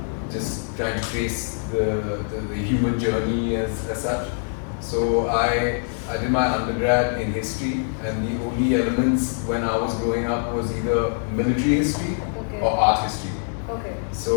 just trying to trace the human journey as such. So I did my undergrad in history, and the only elements when I was growing up was either military history or art history. Okay.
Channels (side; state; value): right; silent; digital silence